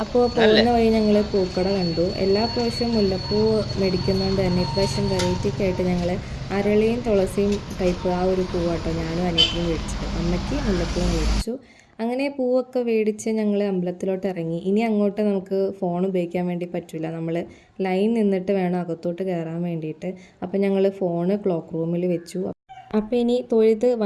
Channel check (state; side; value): identical; both; correlation 1.00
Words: അപ്പോൾ പോകുന്ന വഴി ഞങ്ങൾ പൂക്കട കണ്ടു. എല്ലാ പ്രാവശ്യവും മുല്ലപ്പൂ മേടിക്കുന്നതുകൊണ്ട് തന്നെ ഇപ്രാവശ്യം വെറൈറ്റിക്ക് ആയിട്ട് ഞങ്ങൾ അരളിയും തുളസിയും ടൈപ്പ് ആ ഒരു പൂവാട്ടോ ഞാനും അനിയത്തിയും മേടിച്ചത്. അമ്മയ്ക്ക് മുല്ലപ്പൂവും മേടിച്ചു. അങ്ങനെ പൂവൊക്കെ മേടിച്ച് ഞങ്ങൾ അമ്പലത്തിലോട്ട് ഇറങ്ങി. ഇനി അങ്ങോട്ട് നമുക്ക് ഫോൺ ഉപയോഗിക്കാൻ വേണ്ടി പറ്റില്ല, നമ്മൾ ലൈൻ നിന്നിട്ട് വേണം അകത്തോട്ട് കയറാൻ വേണ്ടിയിട്ട്. അപ്പോൾ ഞങ്ങൾ ഫോണ് ക്ലോക്ക് റൂമിൽ വെച്ചു. അപ്പോൾ ഇനി തൊഴുത്